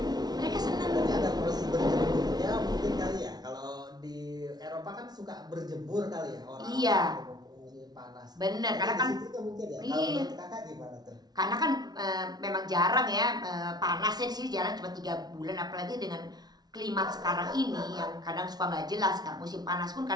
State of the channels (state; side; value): late; left; 0.19 ms